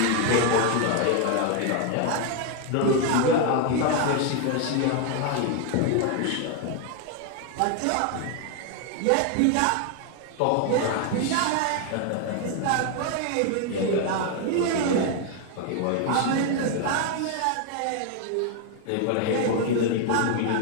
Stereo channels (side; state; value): both; different; correlation 0.01